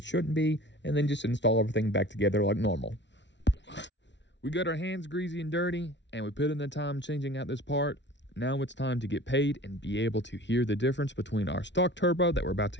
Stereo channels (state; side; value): late; right; 0.52 ms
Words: shouldn't be, and then just install everything back together like normal. We got our hands greasy and dirty, and we put in the time changing out this part. Now it's time to get paid and be able to hear the difference between our stock turbo that we're about